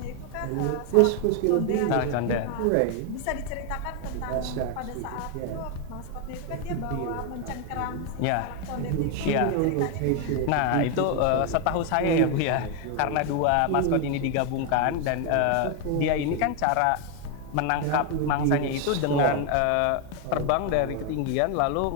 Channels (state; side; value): different; both; correlation 0.01